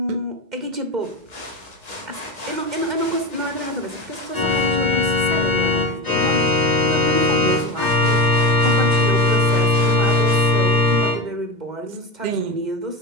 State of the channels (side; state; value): left; late; 2.1 ms